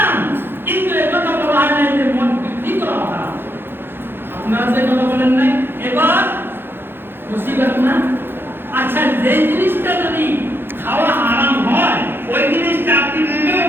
কিন্তু এই কথা বলা হয় না যে মদ বিক্রি করা হারাম। আপনারা যে কথা বলেন নাই, এবার মুসিবত না? আচ্ছা, যে জিনিসটা যদি খাওয়া হারাম হয়, ওই জিনিসটা আপনি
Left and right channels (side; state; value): left; late; 0.10 ms